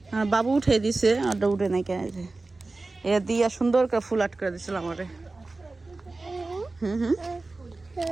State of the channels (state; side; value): quieter; left; 3.4 dB